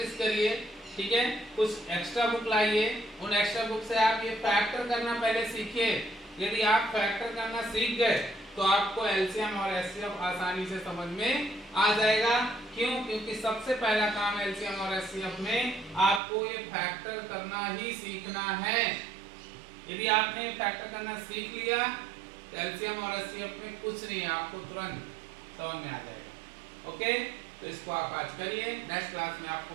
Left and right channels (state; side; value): drops out; left; at 16.2 s